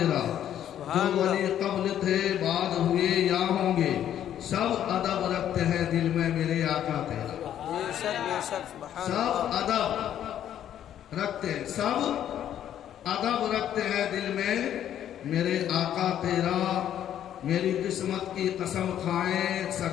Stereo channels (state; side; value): quieter; right; 10.6 dB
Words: جو ولی قبل تھے بعد ہوئے یا ہوں گے، سب ادب رکھتے ہیں دل میں میرے آقا تیرا۔ بے شک بے شک، سبحان اللہ۔ سب ادب رکھتے ہیں، سب ادب رکھتے ہیں دل میں میرے آقا تیرا، میری قسمت کی قسم کھائیں